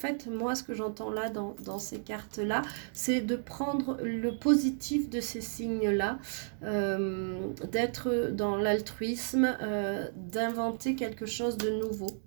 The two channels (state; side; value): silent; left; digital silence